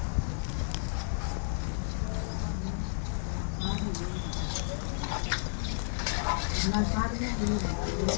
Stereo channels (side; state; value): right; silent; 56 dB below the other